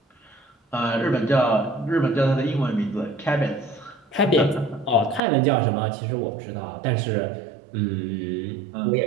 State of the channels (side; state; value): left; drops out; at 5.2 s